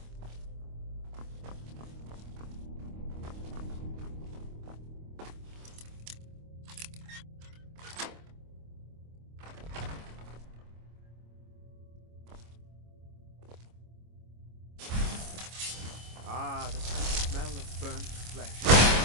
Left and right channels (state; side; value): late; left; 25 ms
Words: Ah, the sweet smell of burnt flesh.